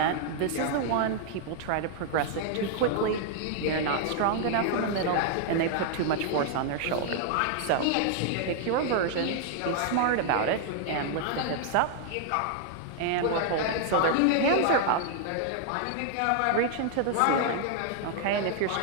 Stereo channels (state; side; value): different; both; correlation 0.00